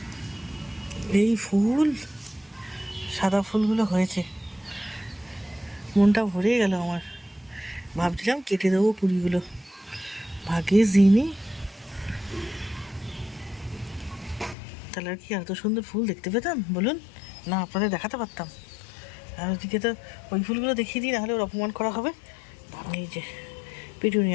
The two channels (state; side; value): drops out; right; at 14.6 s